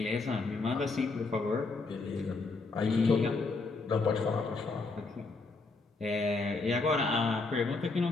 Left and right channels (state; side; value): quieter; right; 3.8 dB